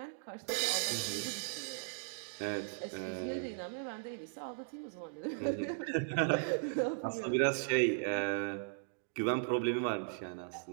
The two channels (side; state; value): left; silent; digital silence